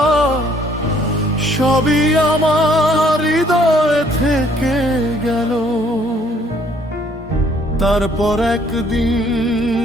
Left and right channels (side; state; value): both; normal; correlation 0.63